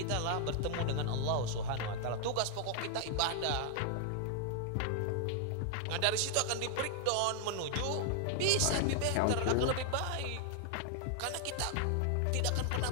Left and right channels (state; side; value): different; both; correlation -0.01